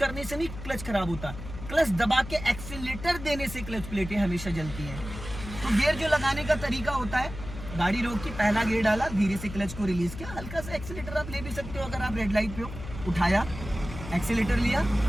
से नहीं क्लच खराब होता, क्लच दबा के एक्सीलेटर देने से क्लच प्लेटें हमेशा जलती हैं। तो गियर जो लगाने का तरीका होता है, गाड़ी रोकी, पहला गियर डाला, धीरे से क्लच को रिलीज किया, हल्का सा एक्सीलेटर आप ले भी सकते हो अगर आप रेड लाइट पे हो, उठाया, एक्सीलेटर लिया,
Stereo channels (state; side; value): noise; left; hum, 11 dB below the sound